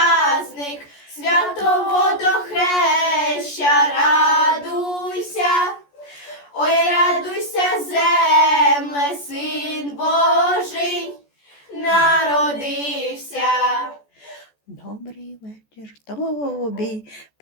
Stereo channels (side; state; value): right; late; 14 ms